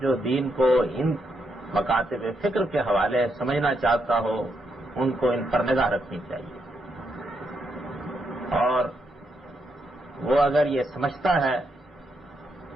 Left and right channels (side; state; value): both; normal; correlation 0.80